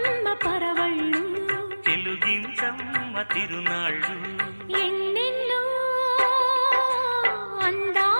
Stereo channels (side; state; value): both; inverted; correlation -1.00